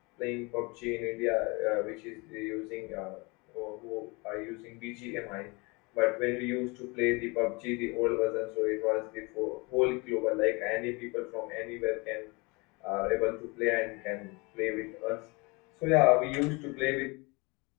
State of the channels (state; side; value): quieter; right; 27.6 dB